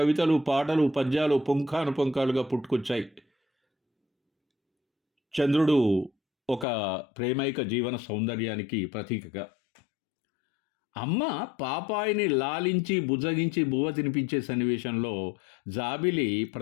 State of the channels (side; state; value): right; drops out; at 6.7 s